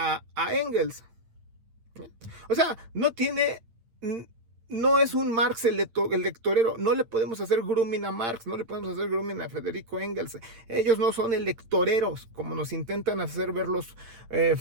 Engels. O sea, no es un Marx el lectorero. No le podemos hacer grooming a Marx, no le podemos hacer grooming a Federico Engels. Ellos no son electoreros, como nos intentan hacer ver los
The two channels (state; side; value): late; left; 8.8 ms